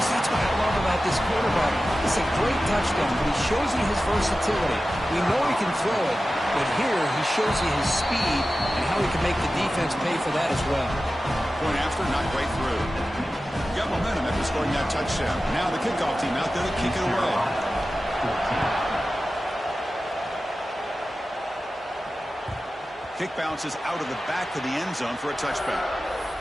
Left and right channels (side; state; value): both; normal; correlation 0.94